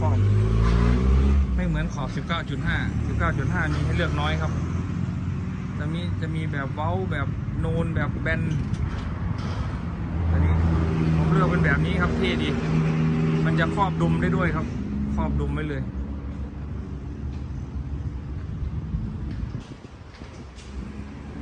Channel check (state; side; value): identical; both; correlation 1.00